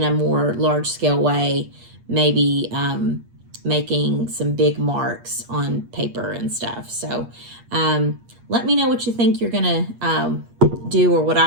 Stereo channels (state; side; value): late; left; 8.4 ms